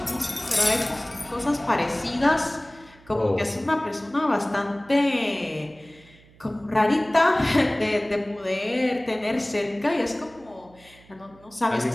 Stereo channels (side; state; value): right; noise; hum, 26 dB below the sound